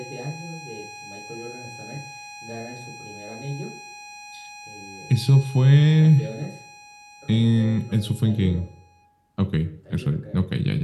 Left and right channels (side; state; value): both; identical; correlation 1.00